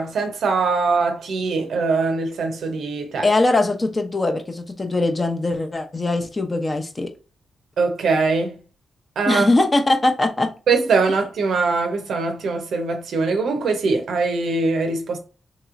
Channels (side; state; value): both; normal; correlation 0.83